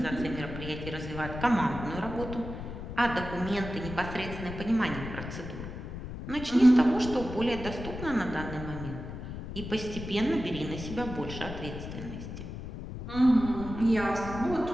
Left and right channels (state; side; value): noise; left; rumble, 9 dB below the sound